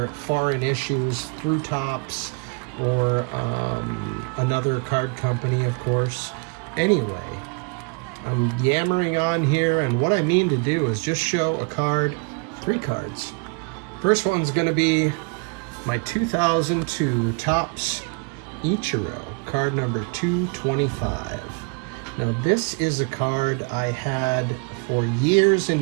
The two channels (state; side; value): quieter; left; 34.6 dB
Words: foreign issues through Tops or another card company, of course. Anyway, I'm yammering on here, and what I mean to do is just show a card, 3 cards. First one's going to be my 2002 Topps Ichiro, card number 225. Now this is a card I had for years